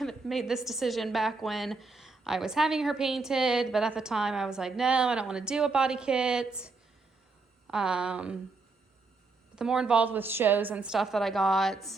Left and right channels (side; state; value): left; quieter; 3.9 dB